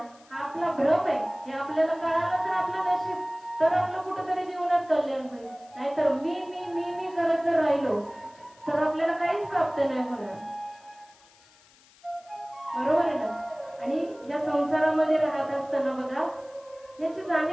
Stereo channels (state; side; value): noise; left; hiss, 28 dB below the sound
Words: हा आपला भ्रम आहे. हे आपल्याला कळालं तर आपलं नशीब, तर आपलं कुठेतरी जीवनात कल्याण होईल. नाहीतर मी मी मी मी करत जर राहिलो तर आपल्याला काहीच प्राप्त नाही होणार. बरोबर आहे ना? आणि या संसारामध्ये राहत असताना बघा, याची